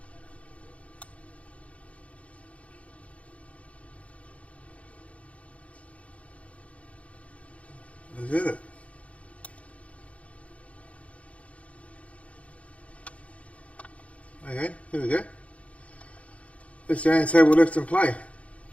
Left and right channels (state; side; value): late; right; 0.065 ms